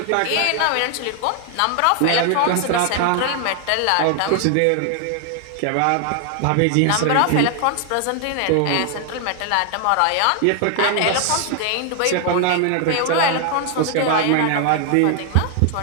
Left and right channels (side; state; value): both; different; correlation 0.00